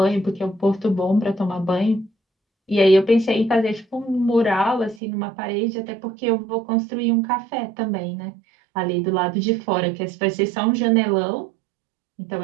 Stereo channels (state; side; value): drops out; left; at 5.0 s